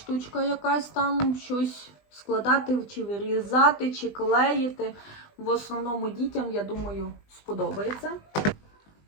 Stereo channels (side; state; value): right; late; 20 ms